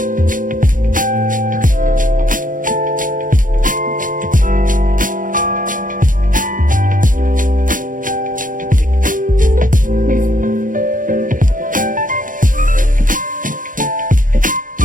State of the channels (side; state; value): left; late; 0.39 ms